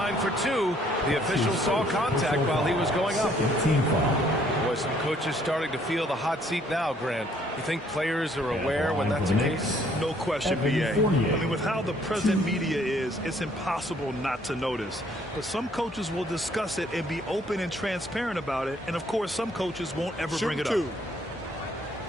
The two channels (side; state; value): both; normal; correlation 0.64